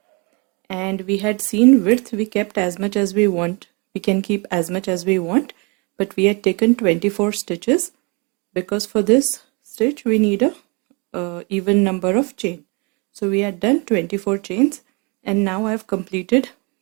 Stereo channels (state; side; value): quieter; left; 31.0 dB